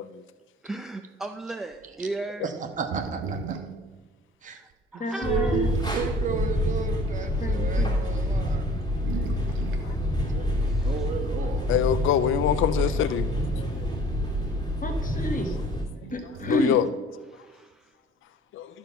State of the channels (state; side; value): normal; both; correlation 0.49